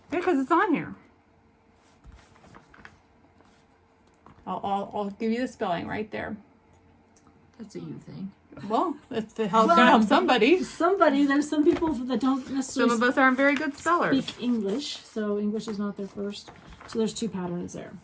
Yeah, because it's on here. I'll give you the spelling right there. That's a you thing. Well, it's to help, gonna help somebody. There's some people that don't Some necessarily of us aren't very good spellers. speak English, so English is not their first. So there's 2 patterns there.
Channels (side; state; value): both; identical; correlation 1.00